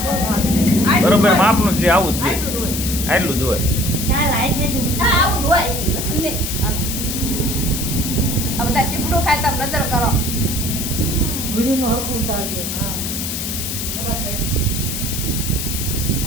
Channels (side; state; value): left; noise; hiss, 4 dB below the sound